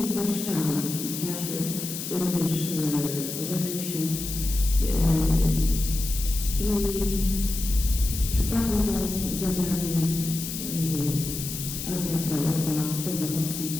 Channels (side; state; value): left; noise; hiss, 6 dB below the sound